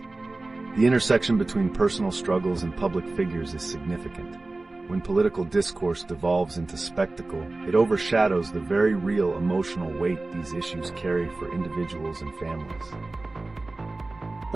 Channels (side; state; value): left; quieter; 3.1 dB